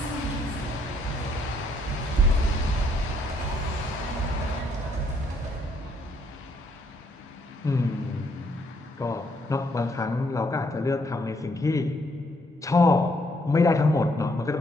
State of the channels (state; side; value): normal; both; correlation 0.70